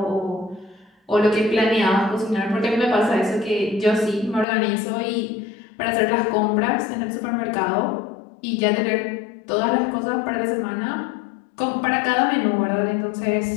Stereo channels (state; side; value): drops out; right; at 4.5 s